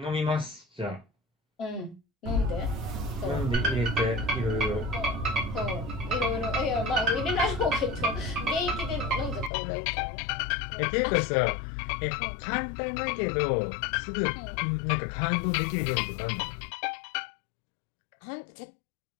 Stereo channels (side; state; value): right; drops out; at 9.5 s